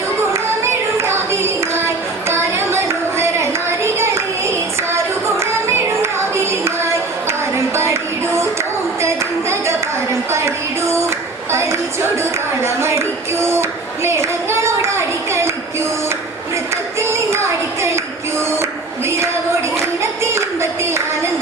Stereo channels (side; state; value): left; quieter; 3.4 dB